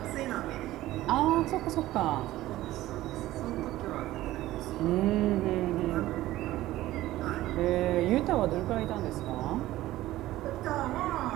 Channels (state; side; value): quieter; left; 15.8 dB